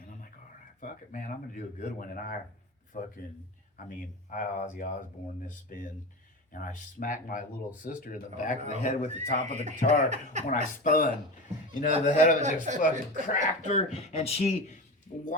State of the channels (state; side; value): normal; both; correlation 0.25